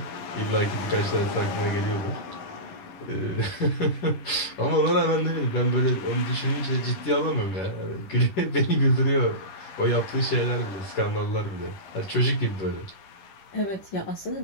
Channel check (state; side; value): late; right; 11 ms